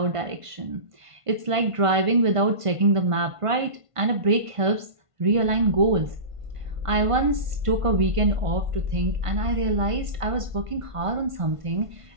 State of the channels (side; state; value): left; late; 1.5 ms